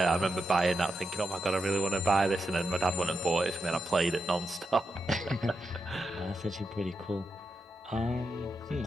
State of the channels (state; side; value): normal; both; correlation 0.86